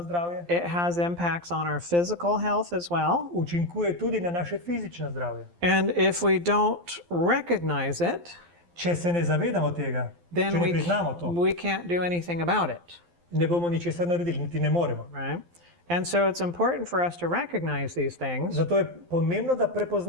zdravje, It has impacts on our physical health as well. učinkuje tudi na naše fizično zdravje. And if we don't recognize it, Če se ne zavedamo tega, then če ne priznamo to, we can't do anything about it, ne bomo ničesar naredili, niti ne moremo. right? And so it's important for us to recognize these things. Zato je pomembno, da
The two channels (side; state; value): left; late; 12 ms